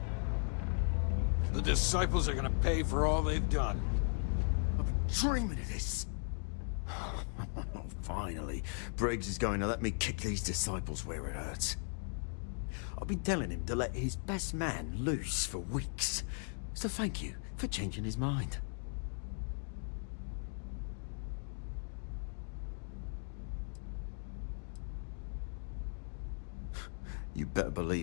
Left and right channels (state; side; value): silent; right; 53 dB below the other